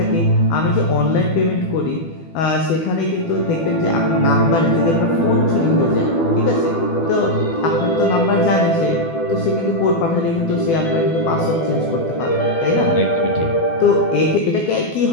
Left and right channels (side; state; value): right; late; 12 ms